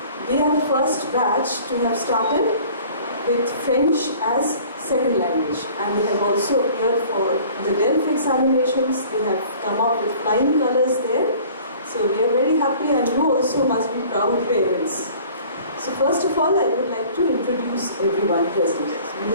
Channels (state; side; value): inverted; both; correlation -0.49